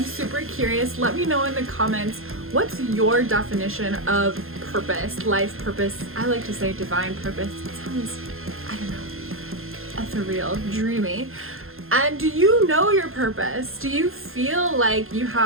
super curious. Let me know in the comments, what's your definition of purpose, life purpose? I like to say divine purpose. It sounds, I don't know, ethereal, dreamy. And do you know your purpose? Do you feel like you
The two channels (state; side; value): late; left; 0.61 ms